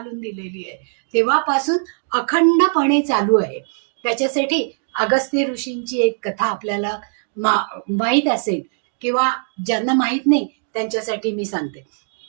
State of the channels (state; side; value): silent; left; 65 dB below the other